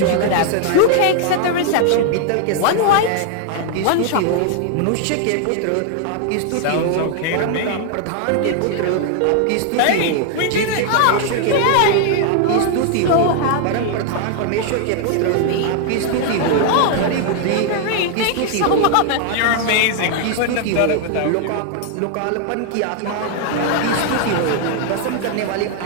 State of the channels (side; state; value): both; different; correlation 0.00